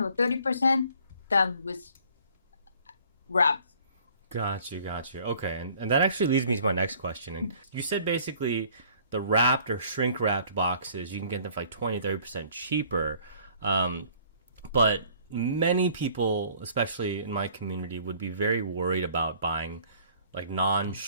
or 30% than with wrap. Got you, got you. Okay, and that actually leads me to my next question. And you said basically the wrapped or shrink wrapped boxes, you can get them for like 20, 30% cheaper. Um, but many people, especially in my community, would be very worried about buying like non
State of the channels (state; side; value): inverted; both; correlation -0.56